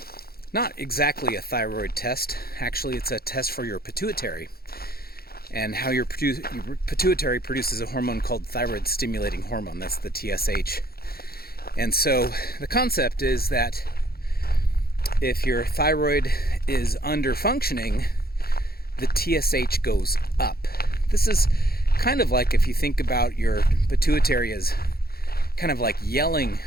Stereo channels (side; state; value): right; late; 0.44 ms